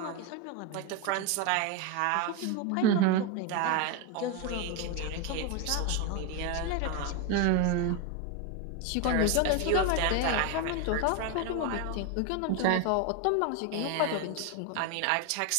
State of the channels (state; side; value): different; both; correlation 0.02